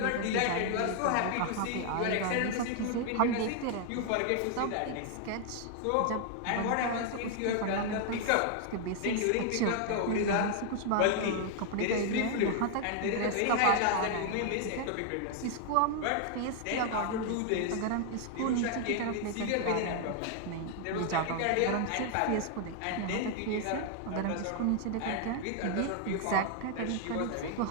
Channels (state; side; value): different; both; correlation 0.00